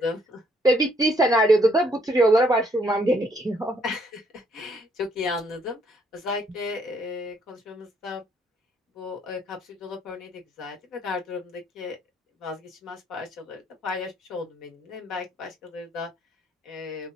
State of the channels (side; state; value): both; normal; correlation 0.68